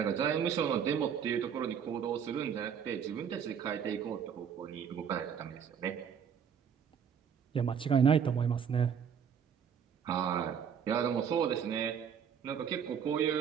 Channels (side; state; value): left; quieter; 7.6 dB